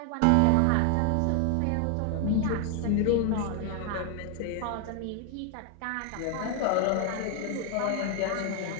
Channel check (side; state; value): both; different; correlation 0.00